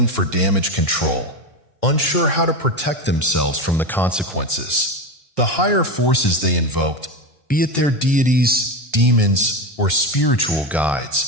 for damage control, unsure how to protect themselves from the consequences. The higher forces they invoked, be it their deities, demons, or spiritual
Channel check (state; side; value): normal; both; correlation 0.18